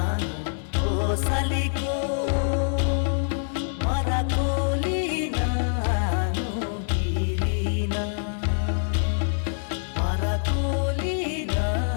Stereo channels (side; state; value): right; silent; 56 dB below the other